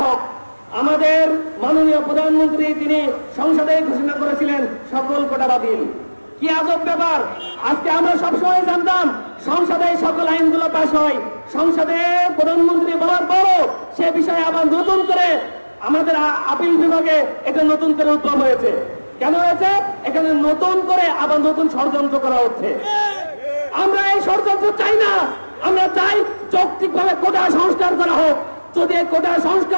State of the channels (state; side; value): inverted; both; correlation -1.00